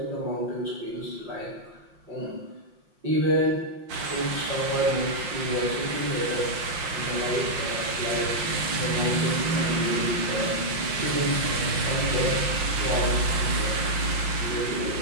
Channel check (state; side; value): late; left; 5.7 ms